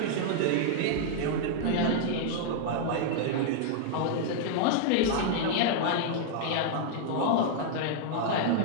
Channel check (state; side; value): different; both; correlation -0.01